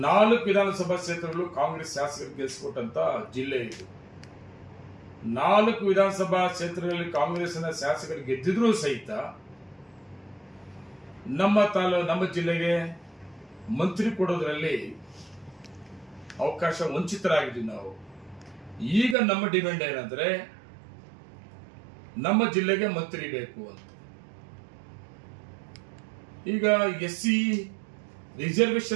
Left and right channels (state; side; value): drops out; left; at 19.2 s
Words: 4 ವಿಧಾನಸಭಾ ಕ್ಷೇತ್ರಗಳು ಕಾಂಗ್ರೆಸ್ ಶಾಸಕರು ಗೆಲ್ಲಿಸಿಕೊಟ್ಟಂತ ಜಿಲ್ಲೆ ಇದು. 4 ವಿಧಾನಸಭಾ ಕ್ಷೇತ್ರಗಳಲ್ಲಿ ಕಾಂಗ್ರೆಸ್ನ ಶಾಸಕರು ಗೆದ್ದಿದ್ರೂ ಸಹಿತ ನಮ್ಮ ಜಿಲ್ಲೆಗೆ ಮಂತ್ರಿ ಕೊಡೋದ್ರಲ್ಲಿ ಅವಕಾಶ ವಂಚಿತರಾಗಿದ್ದೀವಿ ನಾವು. ಈಗ ನಮ್ಮ ಡಿಮ್ಯಾಂಡ್ ಏನಂದ್ರೆ ನಮ್ಮ ಜಿಲ್ಲೆಗೆ ಮಂತ್ರಿ ಬೇಕು ಅಂತ. ಈಗ SC